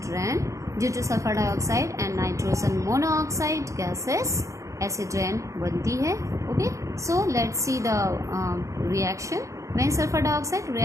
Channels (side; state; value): left; late; 0.15 ms